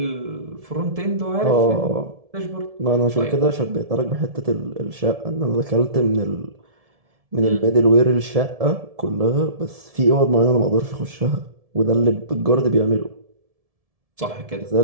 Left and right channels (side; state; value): left; late; 1.7 ms